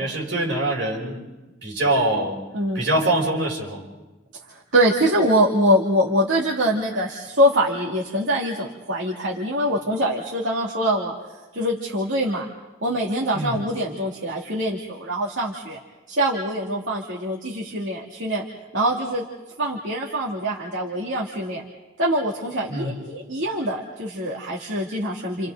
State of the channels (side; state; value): both; normal; correlation 0.01